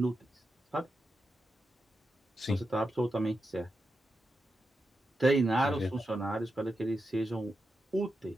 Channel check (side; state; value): both; normal; correlation 0.88